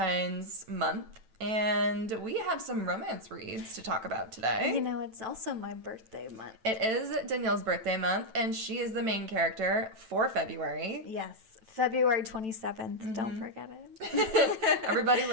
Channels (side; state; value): left; late; 9.1 ms